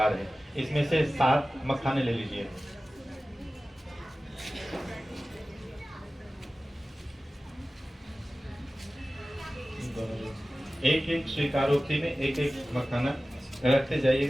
है। इसमें से 7 मखाने ले लीजिए। एक एक स्वीकारोक्ति में एक एक मखाना रखते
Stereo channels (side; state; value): both; normal; correlation 0.96